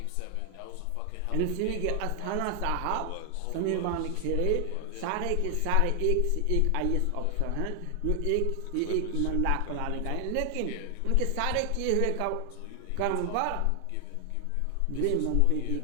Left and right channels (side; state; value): both; different; correlation 0.00